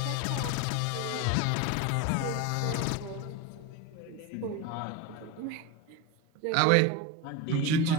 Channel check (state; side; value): different; both; correlation 0.05